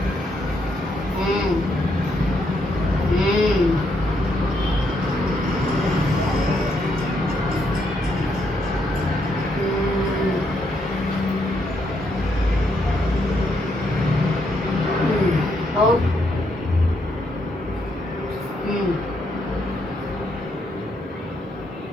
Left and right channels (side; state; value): both; normal; correlation 0.76